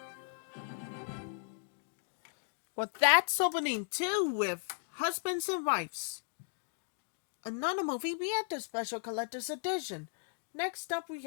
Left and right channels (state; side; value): silent; right; digital silence